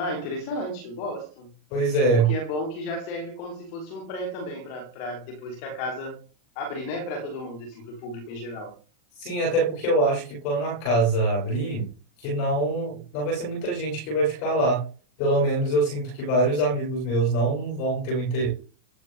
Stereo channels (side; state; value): right; late; 40 ms